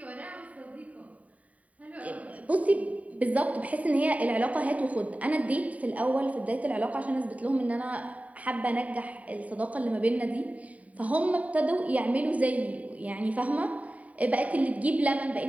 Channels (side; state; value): left; late; 0.069 ms